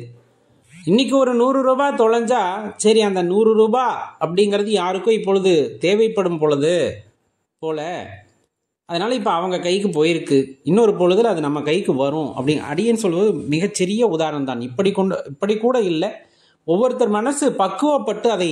இன்னைக்கு ஒரு 100 ரூபாய் தொலைஞ்சா சரி அந்த 100 ரூபாய் அப்படிங்கிறது யாருக்கும் இப்பொழுது தேவைப்படும் பொழுது போல, அதனால இப்போ அவங்க கைக்கு போயிருக்கு, இன்னொரு பொழுதுல அது நம்ம கைக்கு வரும் அப்படி அடியேன்னு சொல்வது மிகச்சிறிய உதாரணம் தான். இப்படி கூட இல்லை, ஒவ்வொருத்தர் மனசு பக்குவப்பட்டு அதை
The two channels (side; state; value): both; identical; correlation 1.00